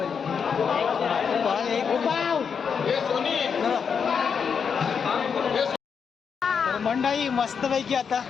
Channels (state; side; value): quieter; right; 6.5 dB